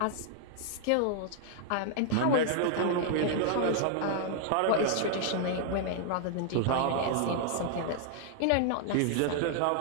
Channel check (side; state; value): both; different; correlation -0.01